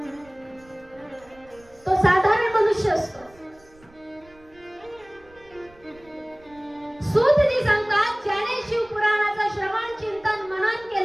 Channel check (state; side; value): noise; right; rumble, 28 dB below the sound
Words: मनुष्य असतो. सूतजी सांगतात, ज्याने शिवपुराणाचं श्रवण चिंतन मनन